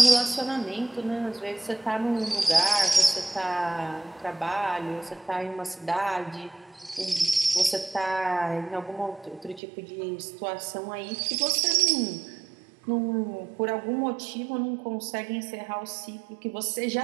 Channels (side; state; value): left; drops out; at 9.6 s